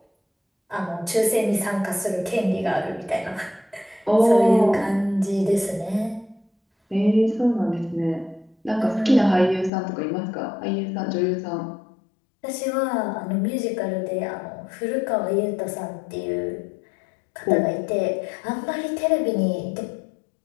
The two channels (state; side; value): drops out; right; at 9.7 s